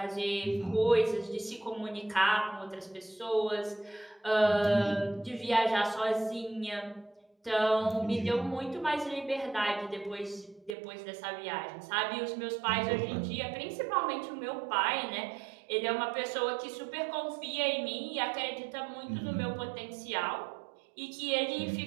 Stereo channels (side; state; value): left; drops out; at 10.8 s